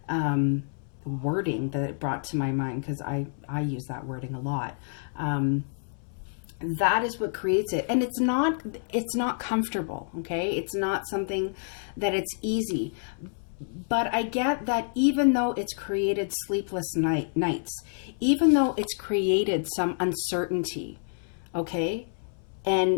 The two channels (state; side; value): silent; right; 59 dB below the other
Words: wording that it brought to my mind, because I use that wording a lot. That is what creates it. And it's not comfortable. Okay. It's not something that it's easy, but I get that even though it's created sleepless nights, even though it's created some uncertainty. Okay.